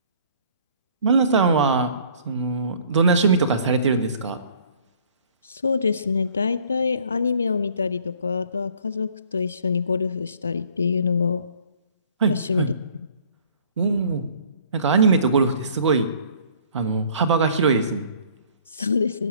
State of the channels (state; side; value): inverted; both; correlation -0.55